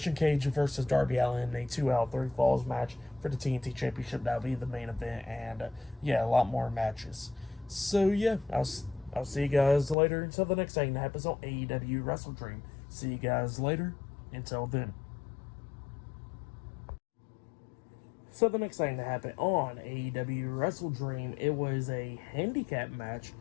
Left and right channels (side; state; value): right; drops out; at 10.0 s